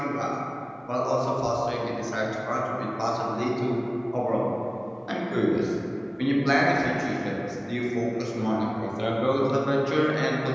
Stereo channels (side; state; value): both; identical; correlation 1.00